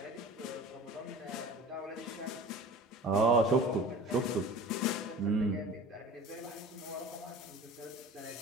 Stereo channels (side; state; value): both; normal; correlation 0.40